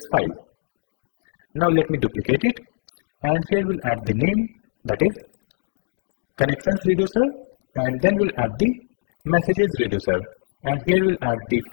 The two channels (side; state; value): right; silent; digital silence